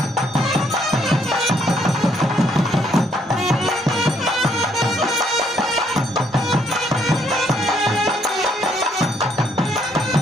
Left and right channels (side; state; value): both; normal; correlation 0.69